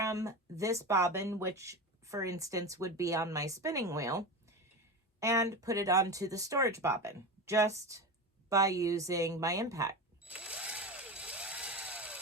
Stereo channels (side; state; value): both; normal; correlation 0.23